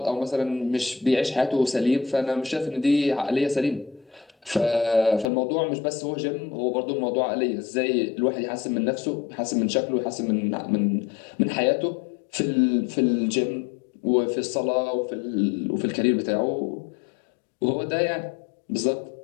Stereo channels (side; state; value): right; drops out; at 5.3 s